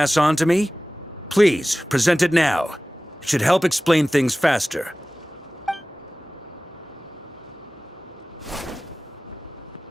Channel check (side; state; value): both; normal; correlation 0.97